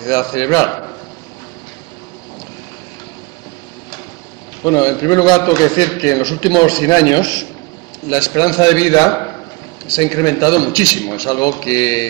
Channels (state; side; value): quieter; left; 26.4 dB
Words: cerebral. Bueno, en primer lugar tengo que decir que en los últimos 100 años la esperanza de vida se ha incrementado muchísimo, es algo